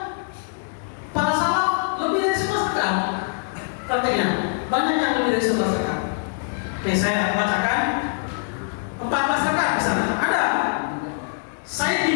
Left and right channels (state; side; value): silent; right; digital silence